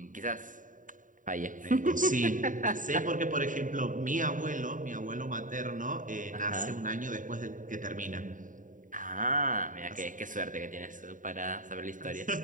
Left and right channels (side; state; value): left; late; 0.38 ms